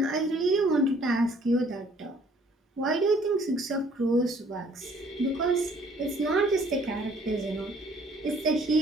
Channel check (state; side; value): normal; both; correlation 0.59